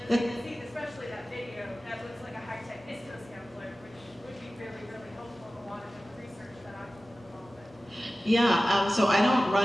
Because I can see, especially that video, that looks like a high-tech ISCO sampler, which would be really, really helpful in a lot of the research that I'm involved in. Yeah, so I don't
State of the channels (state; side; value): normal; both; correlation 0.96